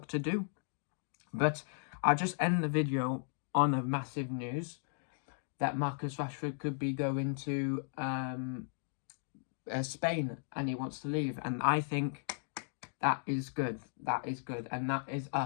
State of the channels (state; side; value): silent; right; digital silence